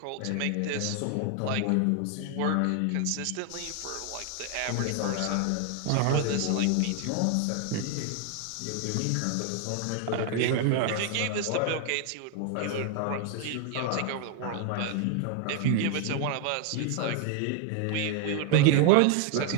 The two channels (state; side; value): different; both; correlation 0.00